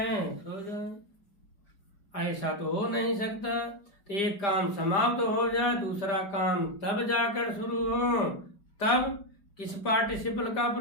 सो जाए, ऐसा तो हो नहीं सकता। तो एक काम समाप्त हो जाए, दूसरा काम तब जाकर शुरू हो, तब किस पार्टिसिपल का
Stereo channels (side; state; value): right; late; 5.0 ms